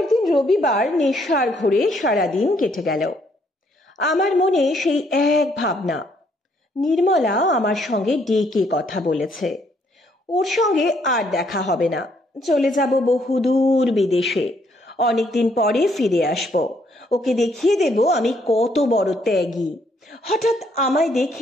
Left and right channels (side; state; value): both; normal; correlation 0.69